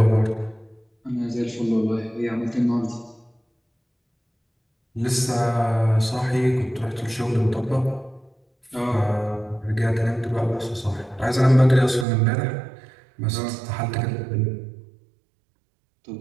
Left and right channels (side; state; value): left; drops out; at 12.1 s